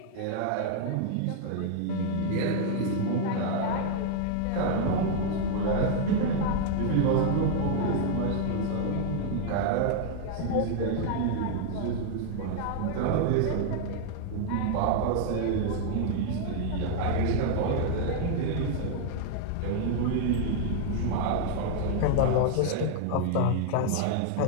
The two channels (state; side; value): different; both; correlation 0.00